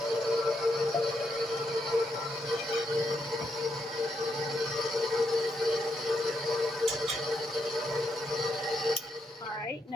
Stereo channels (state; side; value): normal; both; correlation 0.79